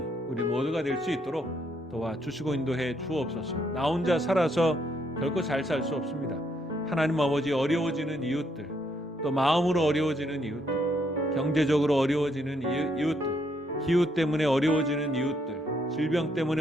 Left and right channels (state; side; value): normal; both; correlation 0.73